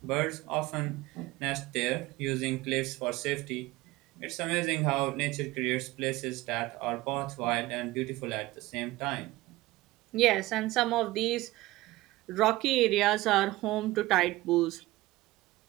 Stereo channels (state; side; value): quieter; left; 18.6 dB